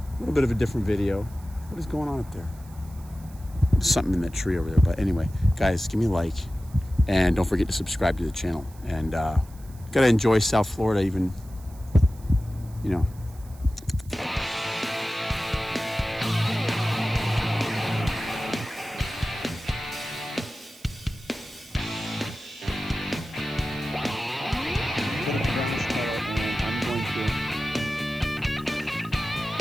little bit of a different video. What is going on up there? There's something in that tree over there. But anyway, guys, give me a like, and don't forget to subscribe to the channel. And gotta enjoy South Florida, even, you know.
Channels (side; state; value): right; noise; hiss, 24 dB below the sound